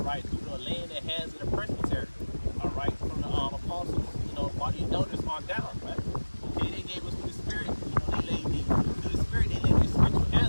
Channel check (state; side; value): inverted; both; correlation -1.00